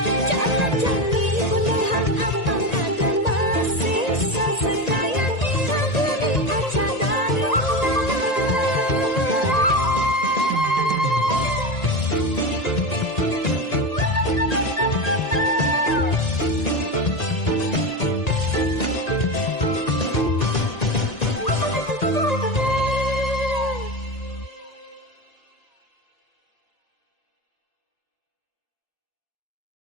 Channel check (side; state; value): right; late; 1.9 ms